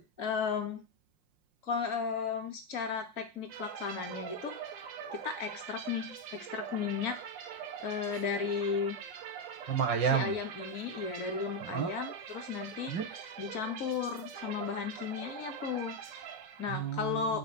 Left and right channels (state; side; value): late; left; 5.6 ms